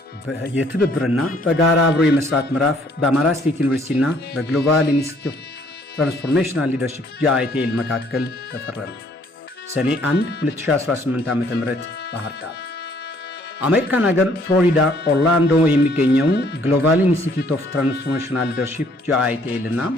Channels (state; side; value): normal; both; correlation 0.62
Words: የትብብርና በጋራ አብሮ የመስራት ምዕራፍ በአማራ ስቴት ዩኒቨርሲቲና በግሎባል ኢንስቲትዩት ትራንስፎርሜሽናል ሊደርሺፕ GITL መካከል ተፈረመ። ሰኔ 1 2018 ዓ.ም ባህር ዳር። አሜሪካን ሀገር ፍሎሪዳ ኦርላንዶ የሚገኘው ግሎባል ኢንስቲትዩት ኦፍ ትራንስፎርሜሽናል ሊደርሺፕ GITL እና